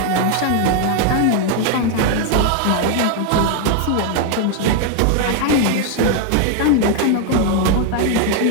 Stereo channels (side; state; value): both; different; correlation 0.00